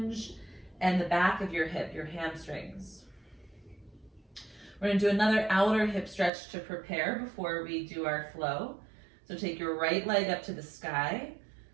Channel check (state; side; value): drops out; left; at 6.3 s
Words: and the back of your hip, your hamstrings. We're going to do another outer hip stretch to prepare before we do our flow. So take your right leg up to the sky.